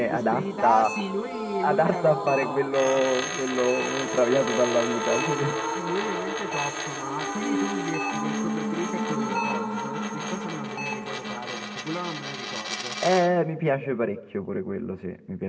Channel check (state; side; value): identical; both; correlation 1.00